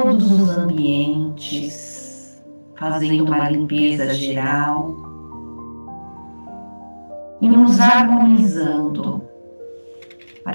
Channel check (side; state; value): both; inverted; correlation -1.00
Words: os ambientes, fazendo uma limpeza geral e nos harmonizando